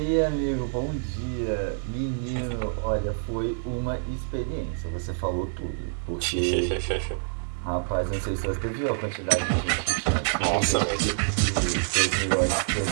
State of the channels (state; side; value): silent; left; digital silence